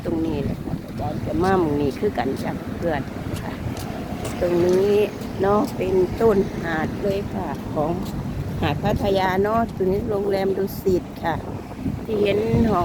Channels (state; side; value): identical; both; correlation 1.00